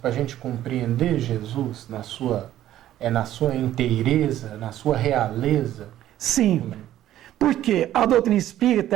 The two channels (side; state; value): left; quieter; 12.8 dB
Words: a gente compreender Jesus na sua inteireza, na sua realeza? Sim, porque a doutrina espírita,